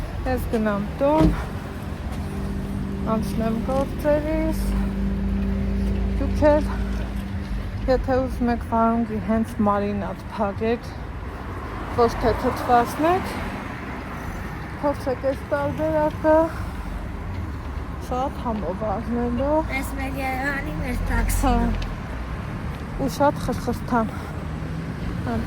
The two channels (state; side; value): identical; both; correlation 1.00